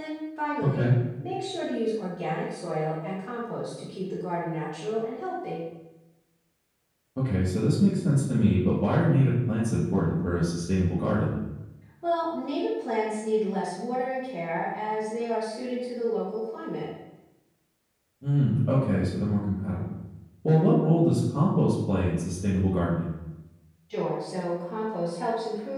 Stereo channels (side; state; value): both; identical; correlation 1.00